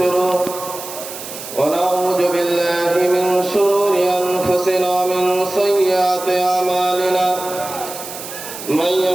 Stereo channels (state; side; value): noise; right; hiss, 11 dB below the sound